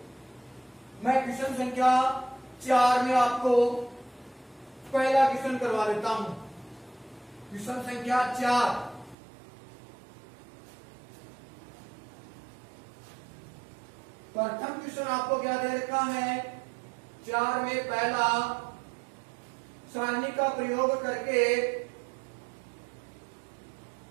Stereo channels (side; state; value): left; drops out; at 9.2 s